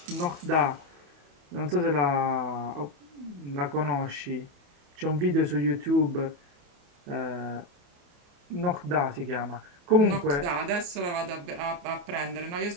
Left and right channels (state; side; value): late; left; 28 ms